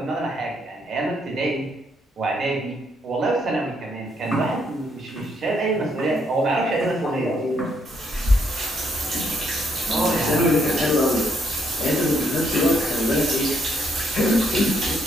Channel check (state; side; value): normal; both; correlation 0.73